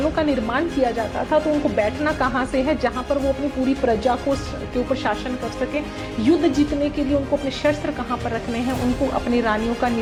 का निर्माण किया जाता था तो उनको बैठना कहाँ से है जहाँ पर वो अपनी पूरी प्रजा को के ऊपर शासन कर सके। युद्ध जीतने के लिए उनको अपने शस्त्र कहाँ पर रखने हैं, उनको अपनी रानियों का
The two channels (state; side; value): identical; both; correlation 1.00